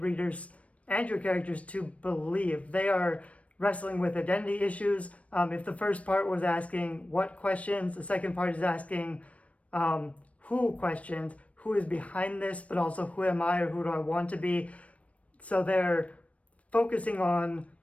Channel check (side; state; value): right; late; 0.065 ms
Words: and your characters to believe. They are wrestling with identity issues. If the first part was asking what questions, the second part is asking who questions, who is behind this, but also who am I or who do I want to be. So they're focusing on